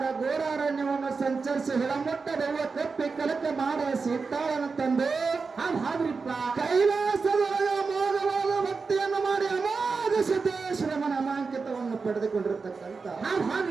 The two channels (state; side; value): quieter; left; 4.6 dB